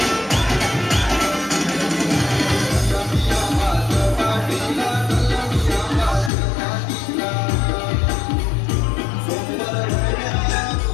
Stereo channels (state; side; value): drops out; right; at 6.3 s